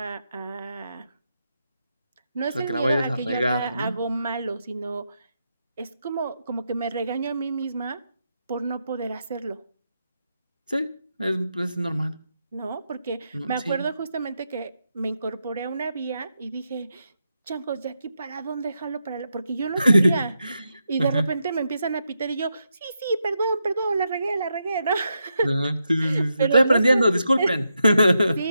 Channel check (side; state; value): both; inverted; correlation -0.84